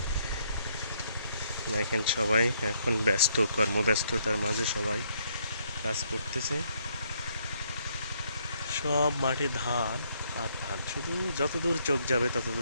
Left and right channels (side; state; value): both; inverted; correlation -0.70